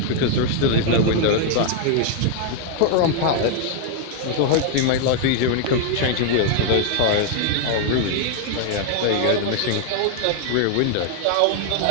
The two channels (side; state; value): both; different; correlation 0.00